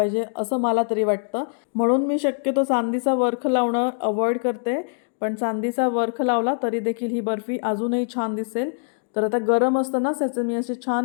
असं मला तरी वाटतं. म्हणून मी शक्यतो चांदीचा वर्ख लावणं अवॉइड करते. पण चांदीचा वर्ख लावला तरी देखील ही बर्फी अजूनही छान दिसेल. तर आता गरम असतानाच याचे मी असे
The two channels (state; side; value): silent; right; digital silence